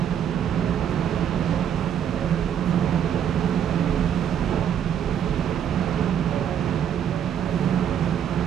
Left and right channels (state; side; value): quieter; left; 9.0 dB